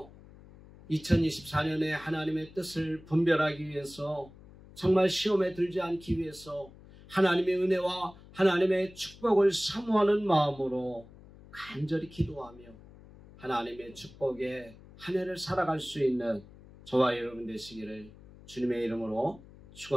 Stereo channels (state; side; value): noise; left; hum, 21 dB below the sound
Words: 2024년에 하나님의 뜻을 분별하기 위해서 정말 시험에 들지 않기 위해서 하나님의 은혜와 하나님의 축복을 사모하는 마음으로 간절히 기도하며 하나님의 축복에 한 해를 살아갈 수 있는 저와 여러분 되시기를 주님의 이름으로